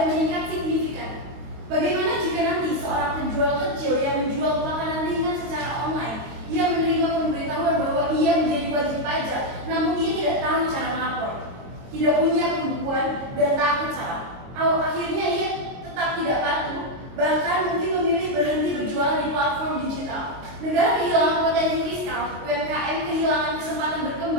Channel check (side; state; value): left; late; 22 ms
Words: meningkat signifikan. Bagaimana jika nanti seorang penjual kecil yang menjual makanan ringan secara online, ia menerima pemberitahuan bahwa ia menjadi wajib pajak, namun ia tidak tahu cara melapor, tidak punya pembukuan, dan takut salah. Akhirnya ia tetap tidak patuh, bahkan mungkin memilih berhenti berjualan di platform digital. Negara kehilangan potensi fiskal, UMKM kehilangan kesempatan